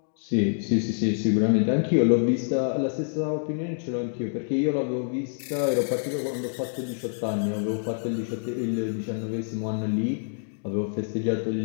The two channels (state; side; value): silent; right; digital silence